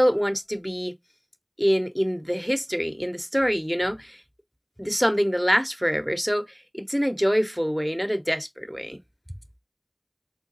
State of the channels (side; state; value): both; identical; correlation 1.00